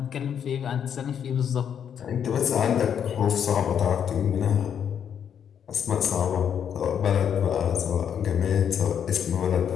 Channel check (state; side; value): quieter; right; 8.4 dB